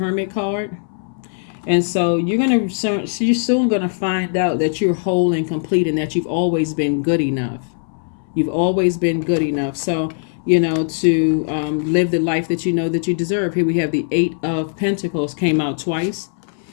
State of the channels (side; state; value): right; silent; 62 dB below the other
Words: card. And so you're soon going to find out that you're whole and complete, and that you've always been good enough. You've always been good enough. So, to live the life that you know that you deserve. Here we have the 8 of Pentacles came out twice.